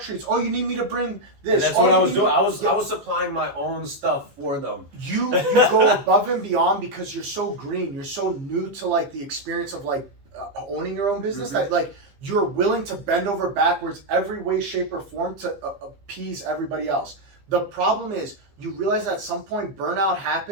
Oh, you need me to bring this. And that's what I was doing. I was supplying my own stuff for them. You go above and beyond because you're so green. You're so new to like the experience of like owning your own business that like you're willing to bend over backwards every way, shape, or form to appease everybody else. The problem is you realize at some point burnout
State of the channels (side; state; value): left; late; 15 ms